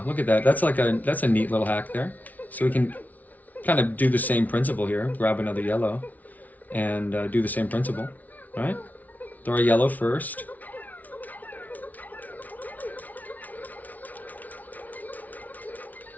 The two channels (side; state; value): right; late; 0.075 ms